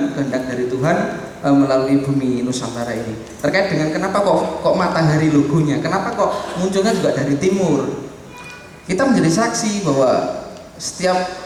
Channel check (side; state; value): both; identical; correlation 1.00